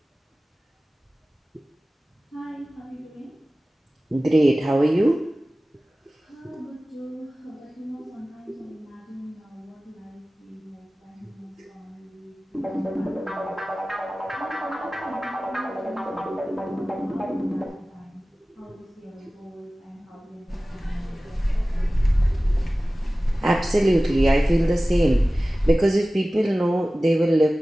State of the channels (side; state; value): both; normal; correlation 0.97